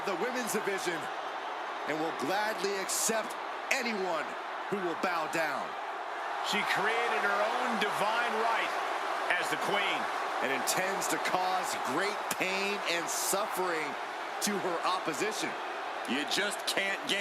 the women's division and will gladly accept anyone who will bow down. She created her own divine right as the Queen and intends to cause great pain and suffering to her opposition. You just can't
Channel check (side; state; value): both; identical; correlation 1.00